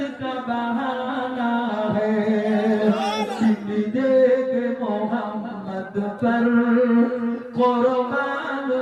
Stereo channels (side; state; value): both; identical; correlation 1.00